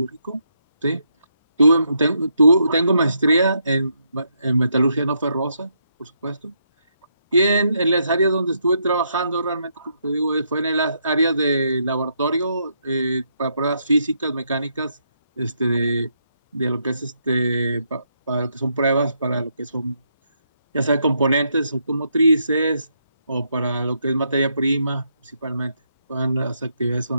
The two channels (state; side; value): inverted; both; correlation -0.78